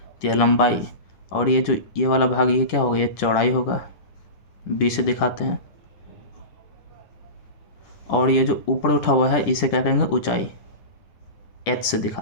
यह लंबाई। और ये जो ये वाला भाग, ये क्या होगा? ये चौड़ाई होगा, बी से दिखाते हैं। और ये जो ऊपर उठा हुआ है, इसे क्या कहेंगे? ऊंचाई, एच से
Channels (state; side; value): late; right; 10 ms